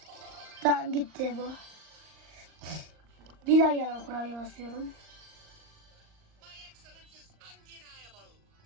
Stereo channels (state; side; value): late; left; 38 ms